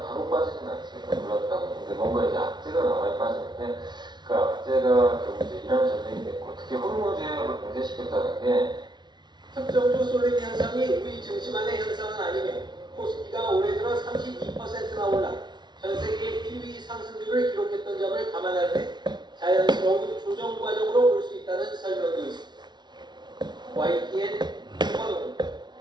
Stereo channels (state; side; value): late; left; 0.21 ms